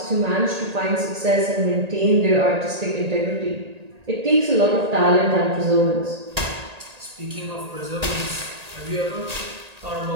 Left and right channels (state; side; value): late; left; 1.8 ms